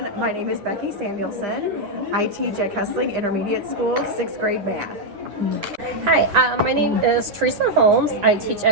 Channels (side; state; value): left; late; 9.9 ms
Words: my name is Becky Samuelson. I teach at Kessling Intermediate School, 6th grade math. Hi, my name is Teresa Holmes. I teach